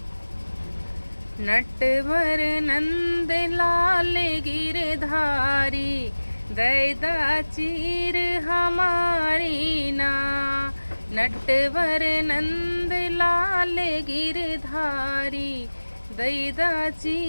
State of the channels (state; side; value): inverted; both; correlation -1.00